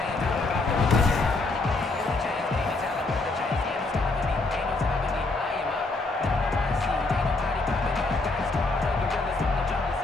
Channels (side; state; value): right; quieter; 3.3 dB